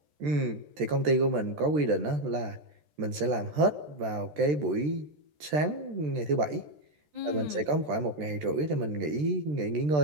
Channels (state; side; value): late; left; 13 ms